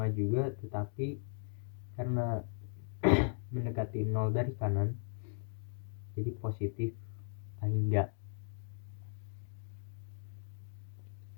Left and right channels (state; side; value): silent; right; digital silence